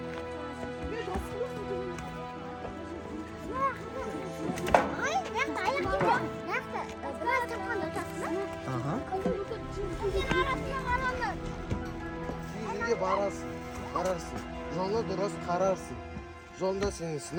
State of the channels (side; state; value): both; identical; correlation 1.00